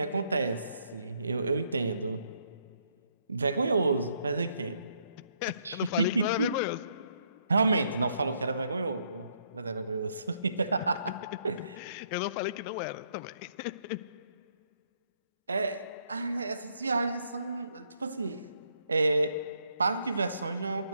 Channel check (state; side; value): inverted; both; correlation -0.71